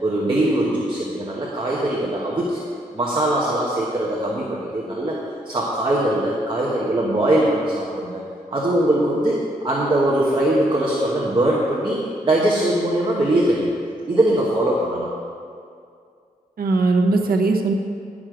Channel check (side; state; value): both; normal; correlation 0.73